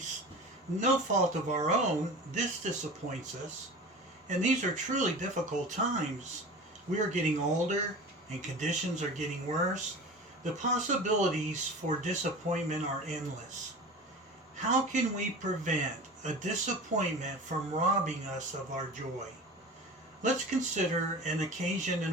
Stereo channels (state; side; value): normal; both; correlation 0.35